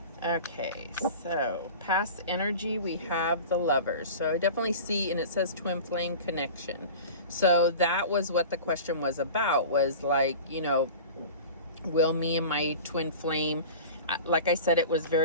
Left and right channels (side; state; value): both; inverted; correlation -0.36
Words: Okay, so past energy, we have the Lovers. So I definitely see, and it says twin flame connection. So that was what the question was about, was like, will me and my twin flame, like I said, it was